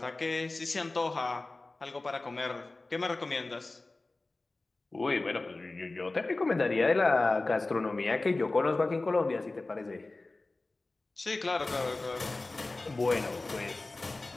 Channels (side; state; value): right; quieter; 3.2 dB